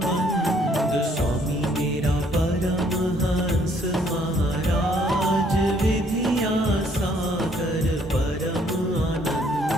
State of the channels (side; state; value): both; normal; correlation 0.65